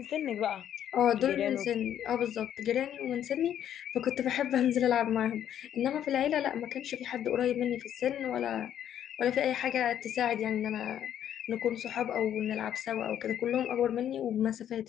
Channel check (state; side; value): quieter; right; 10.3 dB